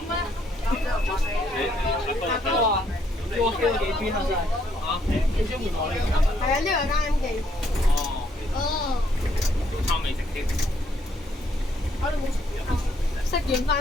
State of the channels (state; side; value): normal; both; correlation 0.70